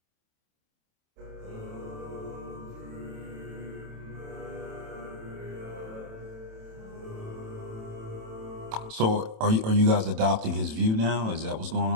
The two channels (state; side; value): late; left; 27 ms